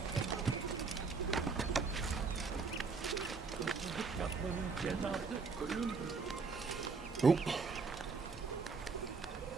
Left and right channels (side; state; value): left; quieter; 4.8 dB